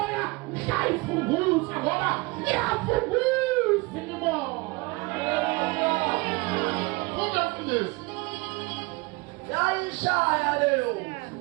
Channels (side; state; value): left; quieter; 25.1 dB